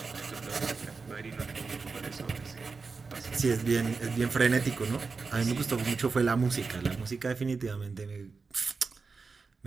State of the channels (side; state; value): left; quieter; 4.6 dB